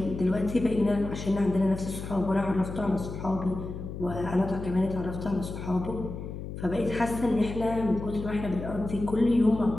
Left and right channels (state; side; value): noise; left; hum, 8 dB below the sound